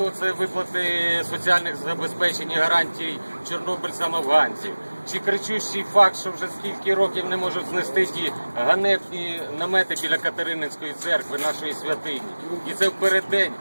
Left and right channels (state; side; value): inverted; both; correlation -1.00